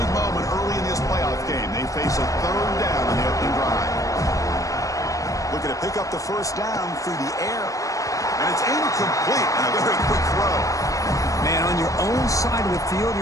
moment early in this playoff game. They face a third down in the opening drive. Looking to pick up the first down through the air. And it's incomplete and a very quick throw. Man, on your own side of the field,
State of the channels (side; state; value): right; late; 0.16 ms